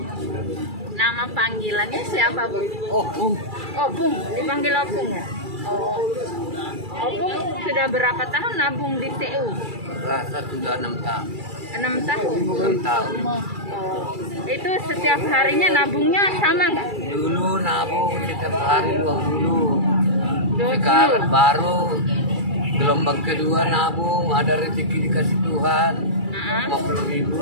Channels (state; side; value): late; left; 2.3 ms